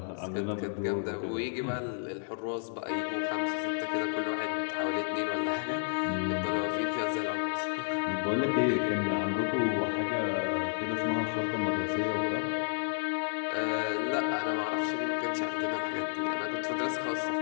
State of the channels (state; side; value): silent; right; 57 dB below the other